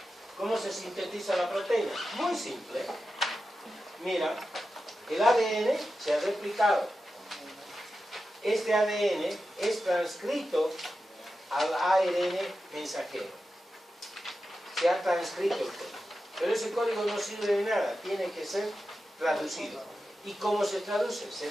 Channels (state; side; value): normal; both; correlation 0.91